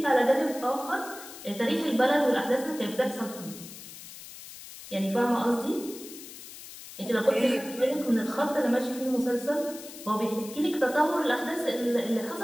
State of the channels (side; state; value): left; noise; hiss, 14 dB below the sound